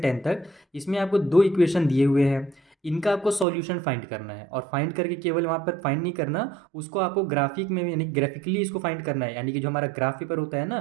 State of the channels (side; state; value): left; drops out; at 3.5 s